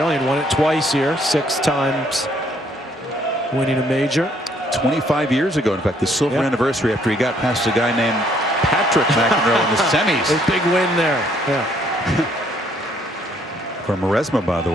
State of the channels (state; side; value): normal; both; correlation 0.66